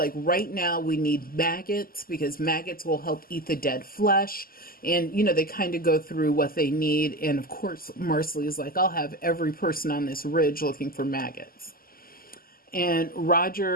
right now we need maggots, because maggots will help eat the dead flesh. And, you know, they kind of go through what they need. And of course, Marcelly is like, I'll have every person on this ridge looking for maggots. And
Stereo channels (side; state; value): right; late; 0.42 ms